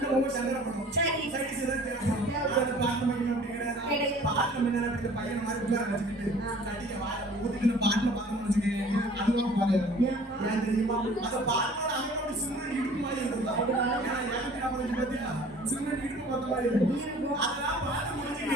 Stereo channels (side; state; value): both; normal; correlation 0.50